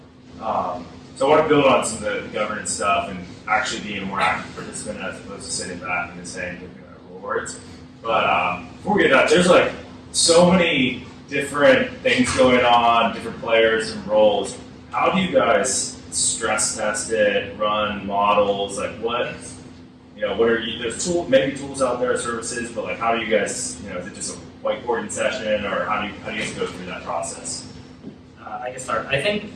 So I want to build on some of the governance stuff and actually being a more active participant as opposed to sitting back and just saying rewards. But before we get to that, there's like so many different things going on, different players and roles. How do you guys stress test it, run models? Like what are you, there's maybe tools out there, services, but like how do you guys, is it just a whiteboarding session, or how do you guys go through that process? I can start. I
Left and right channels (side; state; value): both; identical; correlation 1.00